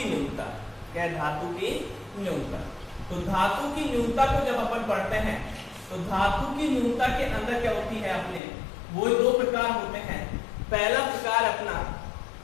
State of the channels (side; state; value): right; drops out; at 8.4 s